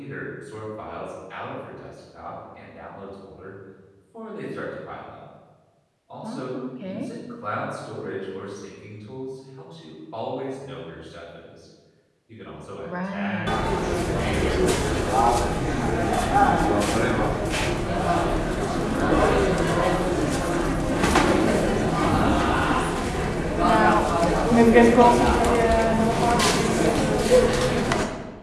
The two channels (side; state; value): both; identical; correlation 1.00